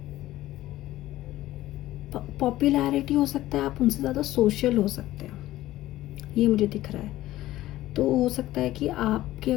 पॉपुलैरिटी हो सकता है, आप उनसे ज़्यादा सोशल हो सकते हैं, ये मुझे दिख रहा है। तो हो सकता है कि आपके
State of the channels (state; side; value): quieter; right; 15.5 dB